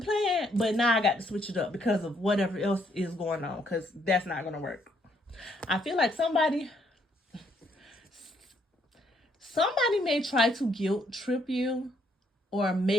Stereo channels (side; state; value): both; normal; correlation 0.70